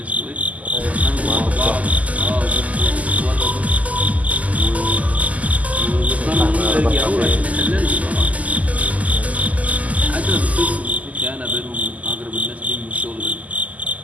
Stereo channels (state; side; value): late; left; 0.073 ms